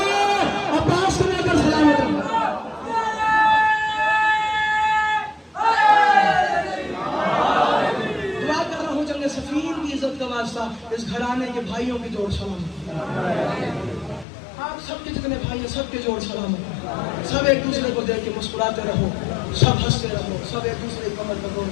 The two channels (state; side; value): drops out; right; at 14.2 s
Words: عباس کو لے کر سلامت رہا. دعا کر رہا ہوں جنگ صفین کی عزت کا واسطہ اس گھرانے کے بھائیوں کی جوڑ سلام. آپ سب کے جتنے بھائی ہیں سب کے جوڑ سلام. سب ایک دوسرے کو دیکھ کے مسکراتے رہو سب ہنستے رہو سب ایک دوسرے کی کمر پر گول